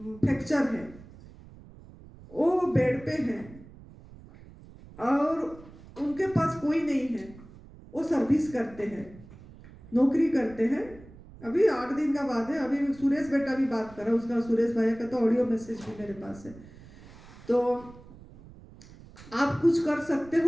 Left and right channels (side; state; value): right; noise; rumble, 20 dB below the sound